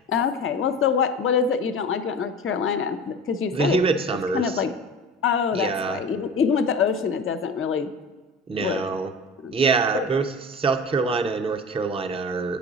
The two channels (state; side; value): normal; both; correlation 0.34